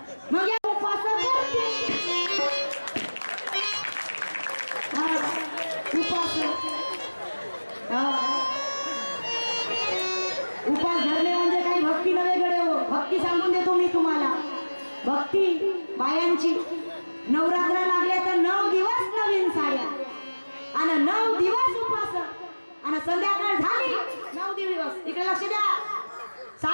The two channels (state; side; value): inverted; both; correlation -1.00